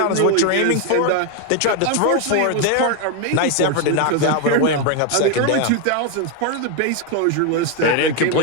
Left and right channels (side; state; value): both; different; correlation 0.01